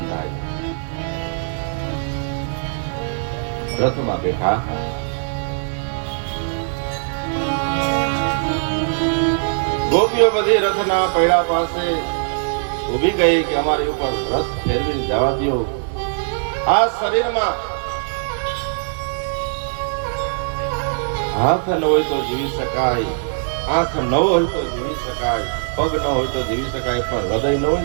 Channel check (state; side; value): silent; left; digital silence